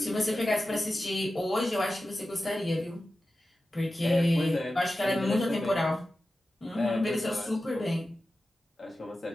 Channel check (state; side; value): normal; both; correlation 0.93